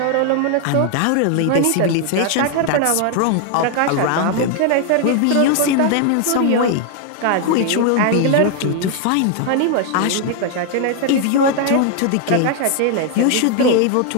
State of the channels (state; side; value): different; both; correlation 0.00